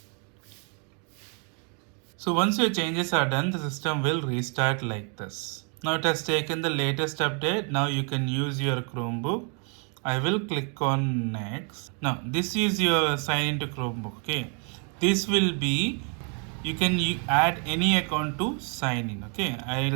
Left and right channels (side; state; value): left; quieter; 38.6 dB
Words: So once your changes are done, the system will restart like this. Now it has taken the latest update. Now you can use your Chromebook. I will click on next. Now this is your sign into Chromebook. Okay, this will be you can add any account to sign in. Okay,